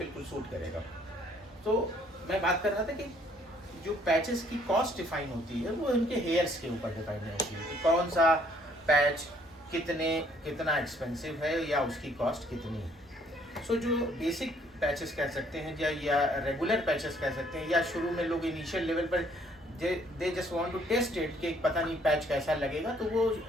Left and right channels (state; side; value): normal; both; correlation 0.63